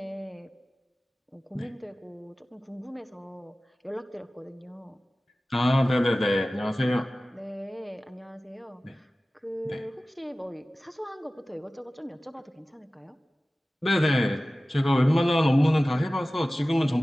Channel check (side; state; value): both; normal; correlation 0.97